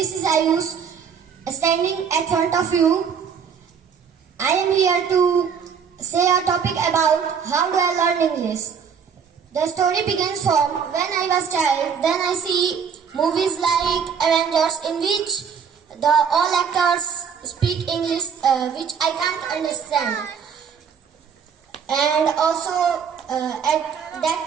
is Ayush standing at front of you. I am here to say a topic about how do I learn English. The story begins from when I was child. Then I see movies like Avengers in which the all actors speak English, which I can't understand. And also at that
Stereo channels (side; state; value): left; quieter; 6.9 dB